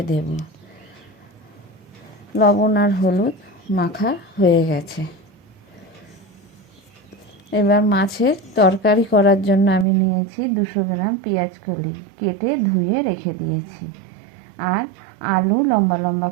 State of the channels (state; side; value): drops out; left; at 9.9 s